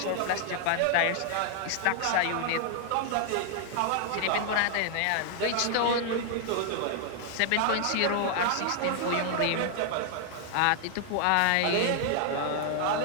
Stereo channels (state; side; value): different; both; correlation 0.00